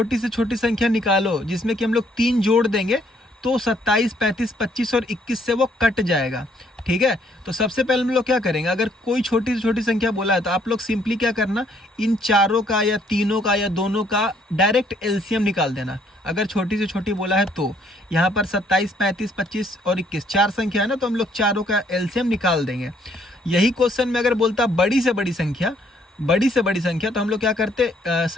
से छोटी संख्या निकालो जिसमें कि हम लोग 3 जोड़ देंगे तो 27, 35, 25 और 21 से वो कट जाएगा, ठीक है। तो सबसे पहले हम लोग क्या करेंगे, अगर कोई छोटी से छोटी संख्या बोला है तो आप लोग सिंपली क्या करना, इन चारों का या तीनों का या दोनों का डायरेक्ट एलसीएम निकाल देना। अगर छोटी से छोटी बोला है तो यहाँ पर 27, 35, 25 और 21 चार संख्या है ना, तो हम लोग चारों का एलसीएम निकाल देंगे। यही क्वेश्चन में अगर बोलता बड़ी से बड़ी संख्या, तो हम लोग क्या करते,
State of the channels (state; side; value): normal; both; correlation 0.66